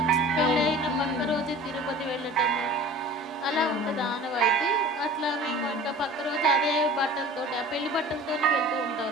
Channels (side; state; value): both; normal; correlation 0.41